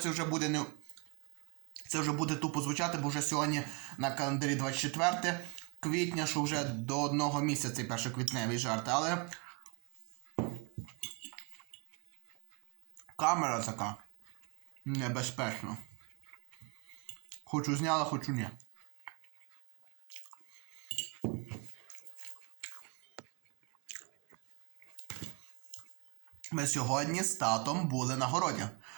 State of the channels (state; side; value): quieter; left; 32.4 dB